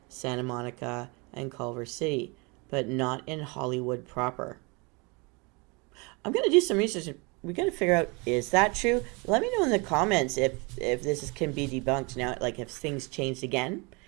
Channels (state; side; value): quieter; left; 29.2 dB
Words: Santa Monica, and Culver City, but not in Hollywood proper. I'm going to do some research. We got to figure out, is that true? Let me know in the comments if this can be debunked now, like if things changed again.